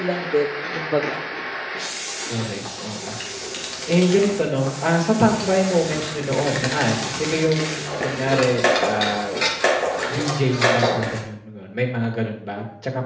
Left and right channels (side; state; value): both; identical; correlation 1.00